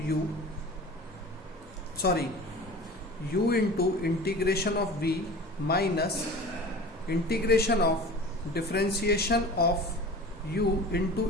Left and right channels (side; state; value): both; normal; correlation 0.38